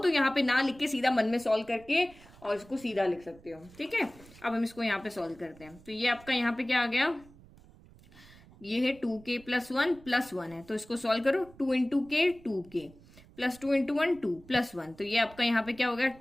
यहाँ पे ना लिख के सीधा मन में सॉल्व करके और इसको सीधा लिख सकते हो, ठीक है। अब हम इसको यहाँ पे सॉल्व करते हैं, तो ये आपका यहाँ पे क्या आ गया, ये है 2k+1 + 1 है, तो इसको सॉल्व करो, 2 × k 2k प्लस 2 × 1 2 + 1, तो ये आपका यहाँ पे क्या हो गया,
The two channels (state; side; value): noise; right; rumble, 23 dB below the sound